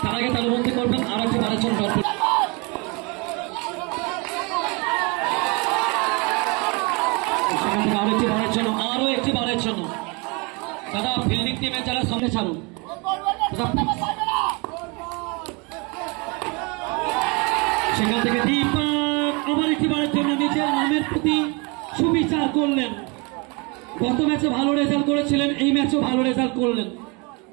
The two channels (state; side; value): quieter; left; 29.9 dB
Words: তার আগে তালুবন্দি করবেন। আরো একটি বারের জন্য সেখান থেকে আরো একটি বারের জন্য দাদা ফিল্ডিং টিমে যারা সামনে ছাড়ুন। সেখান থেকে দীপক আবার একটি বারের জন্য নিজের নামের প্রতি সুবিচার করলেন। গত ম্যাচে ভালো রেজাল্ট করেছিলেন, এই ম্যাচেও ভালো রেজাল্ট করলেন।